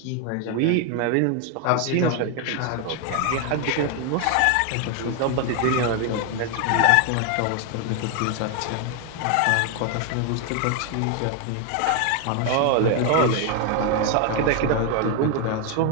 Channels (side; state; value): both; different; correlation 0.01